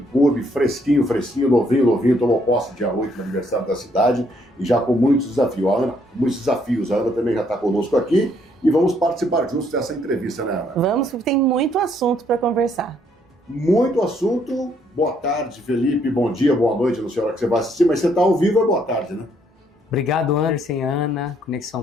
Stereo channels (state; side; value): normal; both; correlation 0.69